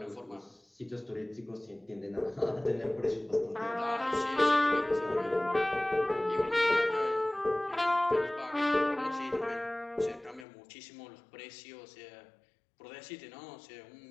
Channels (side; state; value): right; drops out; at 10.5 s